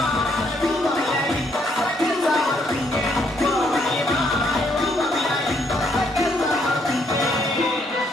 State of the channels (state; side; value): normal; both; correlation 0.71